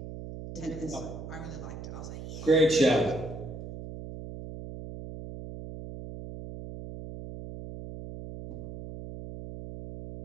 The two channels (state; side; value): noise; right; hum, 10 dB below the sound